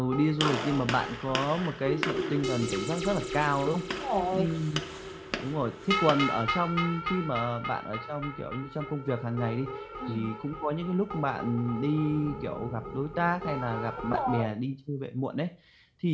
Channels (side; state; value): both; identical; correlation 1.00